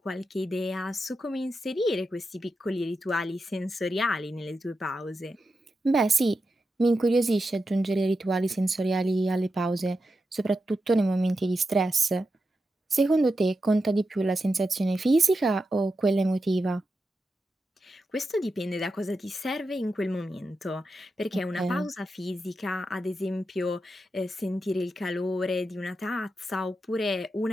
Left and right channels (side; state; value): both; normal; correlation 0.88